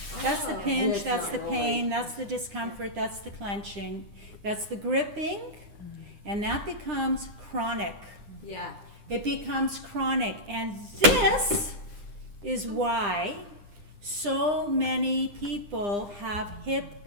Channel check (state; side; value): late; left; 9.9 ms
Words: That's the pinch, It's that's not the pain, rolling. that's the discomfort, that's the clenching, that's the gripping, and that becomes chronic. Yeah. It becomes chronic, and this is why so many people have hip